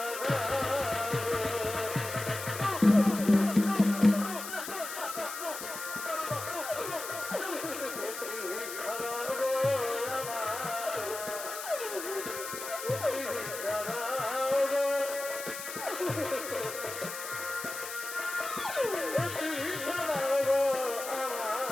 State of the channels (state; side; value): noise; left; hiss, 8 dB below the sound